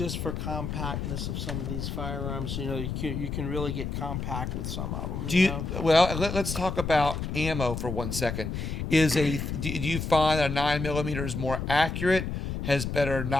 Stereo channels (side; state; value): left; noise; rumble, 4 dB below the sound